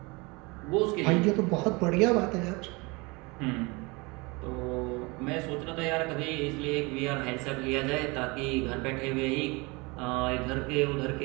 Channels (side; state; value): left; quieter; 26.4 dB